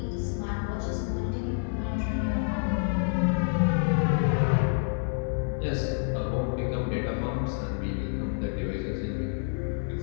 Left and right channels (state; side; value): silent; right; 59 dB below the other